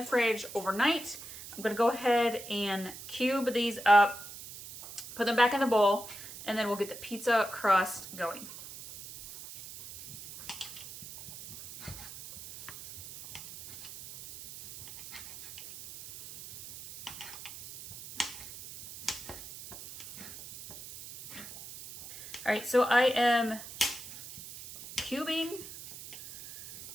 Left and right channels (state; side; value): noise; right; hiss, 13 dB below the sound